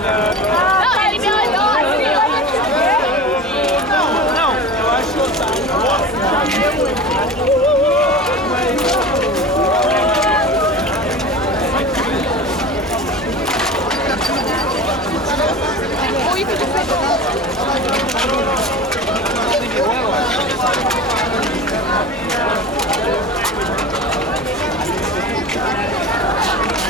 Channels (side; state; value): both; normal; correlation 0.33